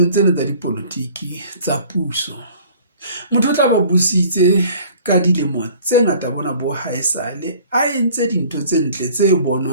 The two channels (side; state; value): both; inverted; correlation -0.50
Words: tsena tsa dipolotiki tsa puso, motho o tla ba busitse ka dilemo tse ngata bona bo haesale a entse dintho tse ntle tse